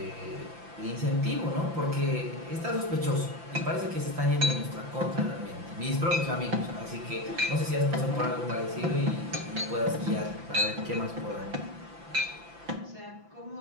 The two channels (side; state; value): left; late; 5.9 ms